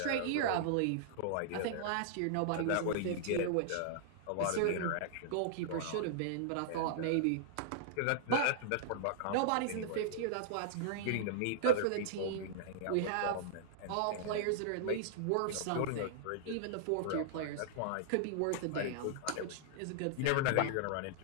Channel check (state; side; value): different; both; correlation -0.01